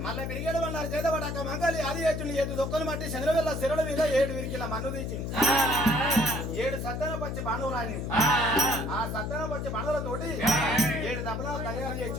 మళ్ళీ బిరిగేడు అన్నారు చేతబడి అక్క మంగళి అది చేస్తుండే 7 దొక్కలు మట్టి చంద్రవేళ శిరల మీద 7 విరికిల మన్ను తీసింది 7 సత్తన పచ్చి బాణువులు రానింది ఆ సత్తన పచ్చి బాణువులతోటి 7 దెబ్బలు తయారు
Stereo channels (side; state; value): left; noise; hum, 3 dB below the sound